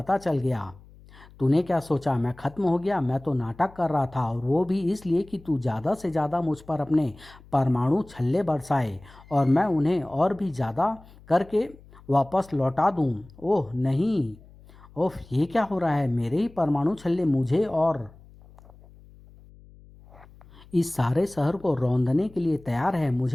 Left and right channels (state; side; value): noise; left; hum, 23 dB below the sound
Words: चल गया। तूने क्या सोचा मैं खत्म हो गया? मैं तो नाटक कर रहा था, और वो भी इसलिए कि तू ज़्यादा से ज़्यादा मुझ पर अपने परमाणु छल्ले बरसाए और मैं उन्हें और भी ज़्यादा करके वापस लौटा दूं। ओह नहीं, ओह ये क्या हो रहा है? मेरे ही परमाणु छल्ले मुझे और इस सारे शहर को रौंदने के लिए तैयार है।